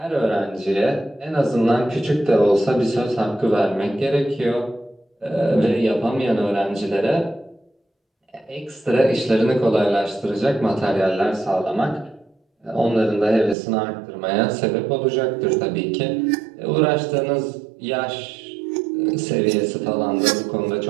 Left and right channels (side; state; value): left; drops out; at 13.6 s